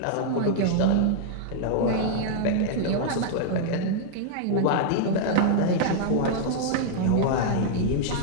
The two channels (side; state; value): both; different; correlation -0.01